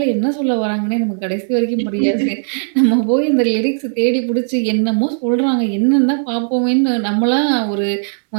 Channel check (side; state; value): left; silent; 69 dB below the other